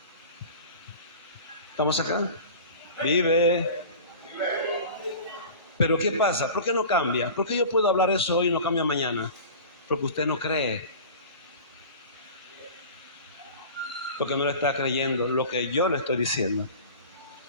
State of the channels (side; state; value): both; inverted; correlation -0.38